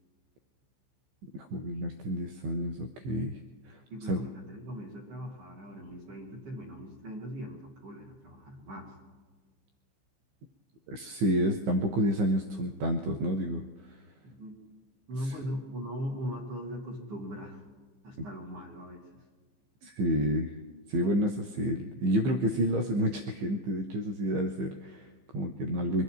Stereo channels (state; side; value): late; left; 15 ms